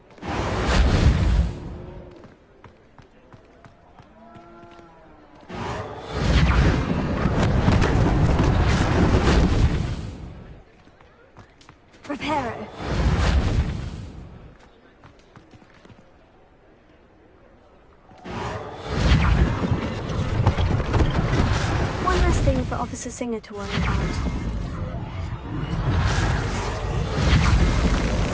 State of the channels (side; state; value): both; identical; correlation 1.00